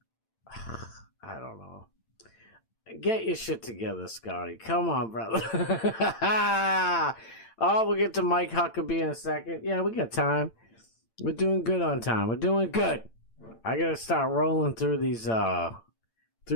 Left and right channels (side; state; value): right; late; 8.9 ms